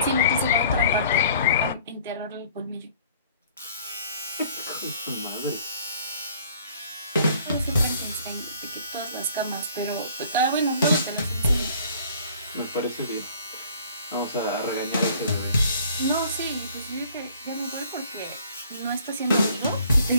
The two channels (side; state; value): both; inverted; correlation -0.55